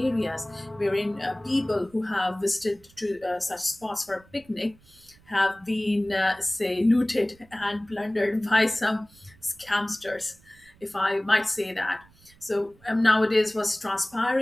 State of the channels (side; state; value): right; noise; rumble, 28 dB below the sound